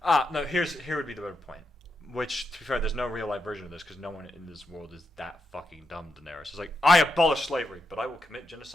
No. Here would be the better point. Which, to be fair, there's no real life version of this because no one in this world is that fucking dumb. Daenerys is like, I abolish slavery, but I will commit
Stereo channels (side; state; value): both; normal; correlation 0.83